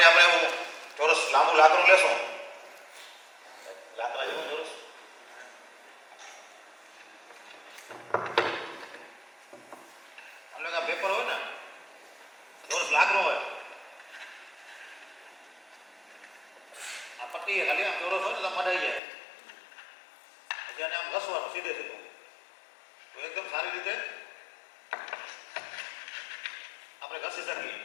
આપણે એવું ચોરસ લાંબુ લાકડું લેશું, લાકડા જેવું ચોરસ, પેપર હોય ને ચોરસ લાકડું હોય, આ પટ્ટી ખાલી આમ ચોરસ હોય ને તો મઢાઈ જાય. પછી આને આમ ઘસવાનું સીધે સીધું તો એકદમ સારી રીતે આપણે ઘસી શકીએ.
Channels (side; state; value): right; drops out; at 19.0 s